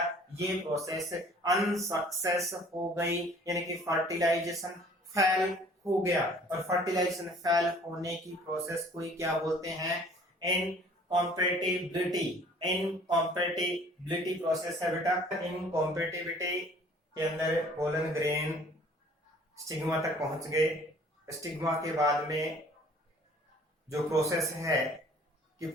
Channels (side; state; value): both; normal; correlation 0.53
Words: ये प्रोसेस अनसक्सेस हो गई, यानी कि फर्टिलाइजेशन फेल हो गया। और फर्टिलाइजेशन फेल होने की प्रोसेस को ही क्या बोलते हैं? इनकॉम्पेटिबिलिटी। इनकॉम्पेटिबिलिटी प्रोसेस है बेटा। इनकॉम्पेटिबिलिटी के अंदर पोलन ग्रेन स्टिग्मा तक पहुंच गए। स्टिग्मा के बाद में जो प्रोसेस है कि